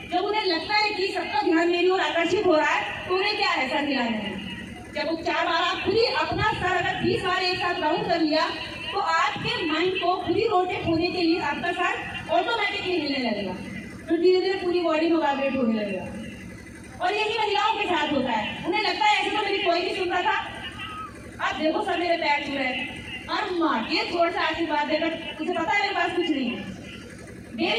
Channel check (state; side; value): identical; both; correlation 1.00